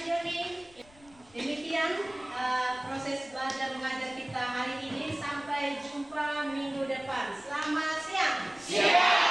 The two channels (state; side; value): noise; left; rumble, 27 dB below the sound